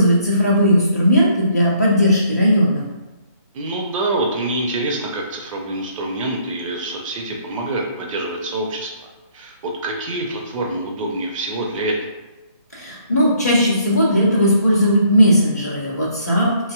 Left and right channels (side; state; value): both; inverted; correlation -0.65